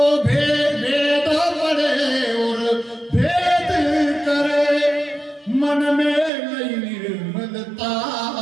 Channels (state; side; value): drops out; left; at 6.3 s